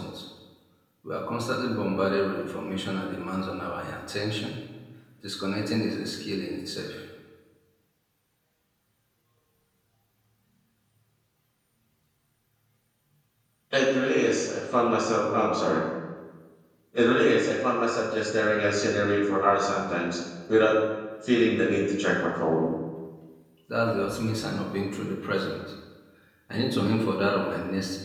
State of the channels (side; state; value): both; identical; correlation 1.00